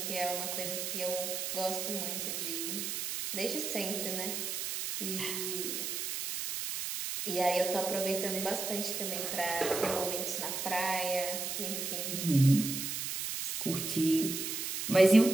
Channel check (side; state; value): right; noise; hiss, 3 dB below the sound